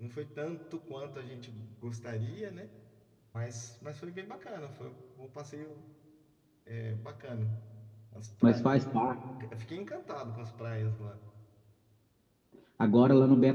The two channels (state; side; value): identical; both; correlation 1.00